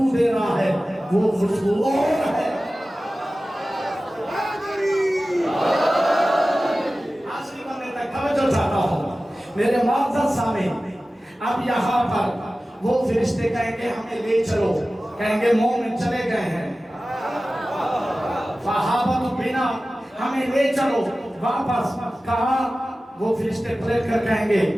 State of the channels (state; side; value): normal; both; correlation 0.96